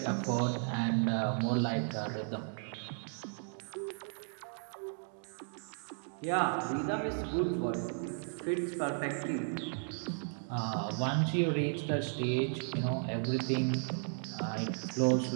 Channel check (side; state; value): left; silent; 54 dB below the other